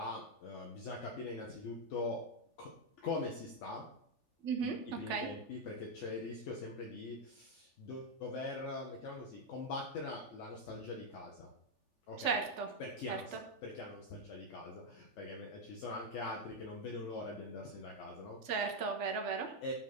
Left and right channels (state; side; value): late; right; 3.4 ms